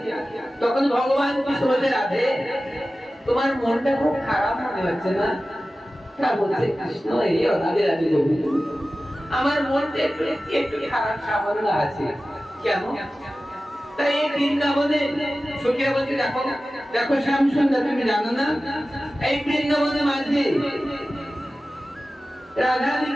তখন ভগবান কৃষ্ণ বলতে, রাধে তোমার মনটা খুব খারাপ মনে হচ্ছে না? তা বলছে কৃষ্ণ, এই রাধে রাধে গোবিন্দ, আমার মনটা একটু একটু খারাপ সামান্য আছে। কেন? তাই এই বৃন্দাবনে সখীরা বলছে, দেখো দেখো শ্যাম সুন্দর, তুমি জানো না এই বৃন্দাবনের মাঝে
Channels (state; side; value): normal; both; correlation 0.95